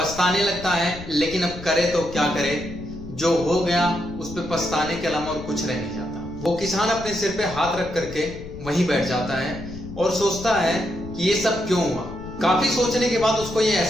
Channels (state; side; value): noise; left; rumble, 13 dB below the sound